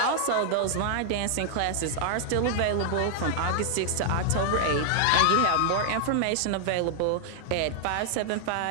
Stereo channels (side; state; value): both; different; correlation -0.01